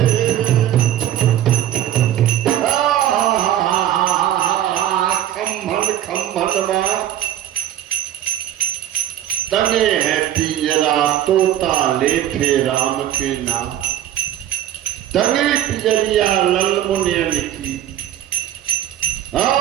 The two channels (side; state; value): left; quieter; 11.9 dB